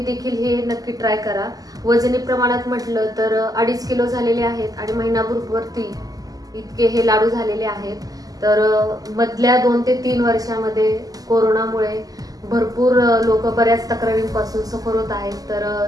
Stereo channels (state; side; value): late; left; 0.17 ms